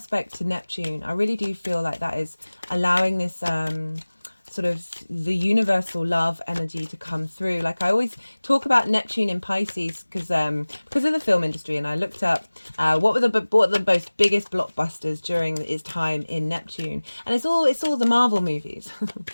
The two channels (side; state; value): both; inverted; correlation -1.00